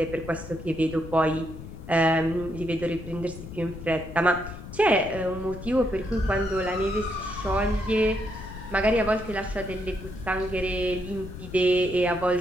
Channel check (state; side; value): noise; left; rumble, 12 dB below the sound